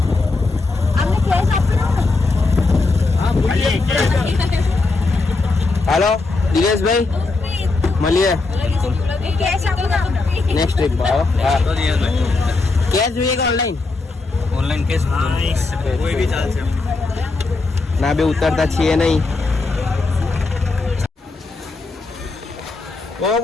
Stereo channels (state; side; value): quieter; right; 3.6 dB